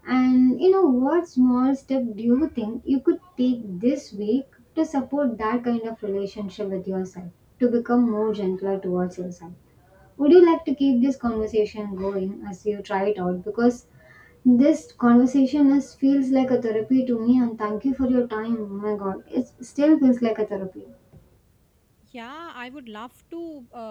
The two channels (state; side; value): identical; both; correlation 1.00